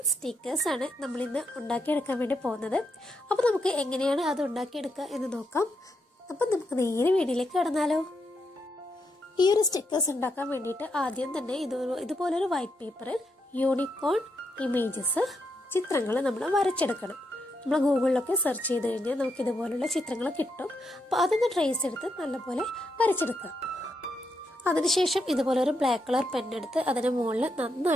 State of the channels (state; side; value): normal; both; correlation 0.81